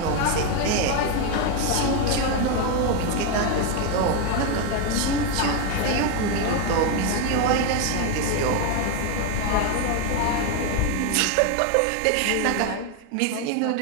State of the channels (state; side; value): different; both; correlation 0.01